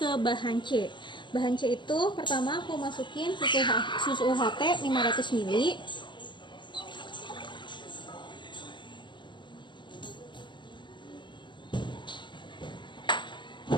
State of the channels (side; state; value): right; late; 0.22 ms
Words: bahan C. Bahan C itu pertama aku masukin susu UHT 500 ml.